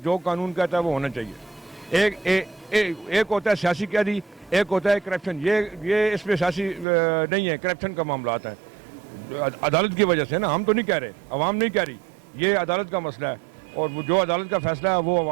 जो कानून कहता है वो होना चाहिए। एक होता है सियासी कैदी, एक होता है करप्शन। ये इसमें सियासी नहीं है, करप्शन का मामला आता है अदालत की वजह से ना। हम तो नहीं कह रहे, अवाम नहीं कह रही, ये अदालत का मसला है, और वो जो अदालत का फैसला है वो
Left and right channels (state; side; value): drops out; left; at 6.9 s